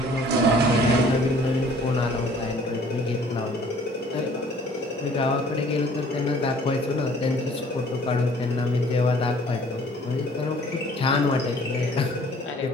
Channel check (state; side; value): normal; both; correlation 0.55